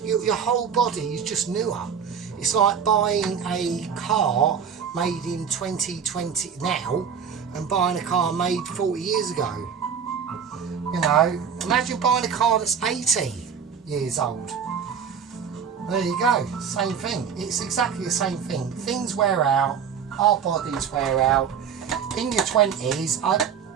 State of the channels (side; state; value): left; quieter; 7.1 dB